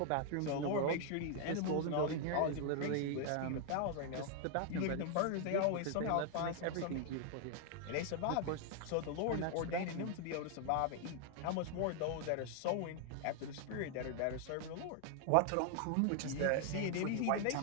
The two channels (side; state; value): both; different; correlation 0.00